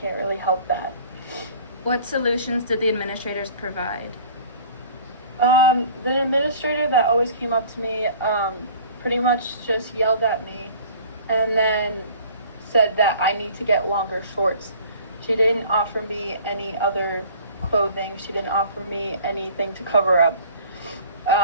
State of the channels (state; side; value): inverted; both; correlation -0.48